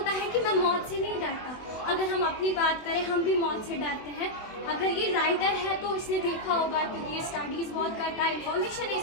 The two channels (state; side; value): late; right; 24 ms